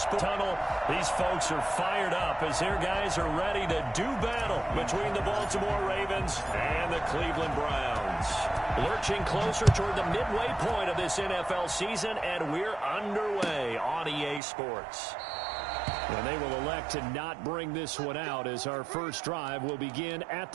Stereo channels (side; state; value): left; drops out; at 14.4 s